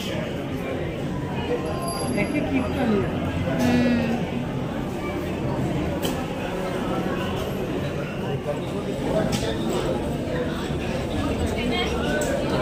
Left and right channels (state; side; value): identical; both; correlation 1.00